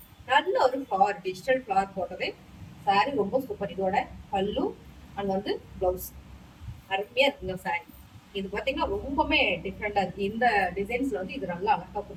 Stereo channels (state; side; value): identical; both; correlation 1.00